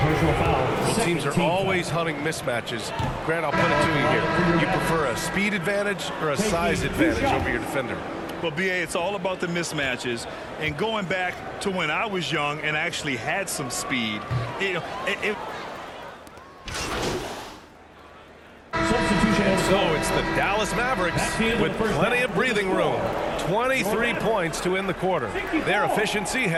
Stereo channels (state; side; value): identical; both; correlation 1.00